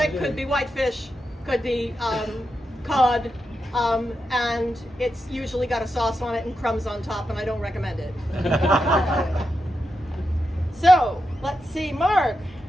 could be whitefish, could be cod, and it's usually got a sauce on it and crumbs on top, and I don't recommend it. So, let's see, Mark.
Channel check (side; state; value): both; normal; correlation 0.87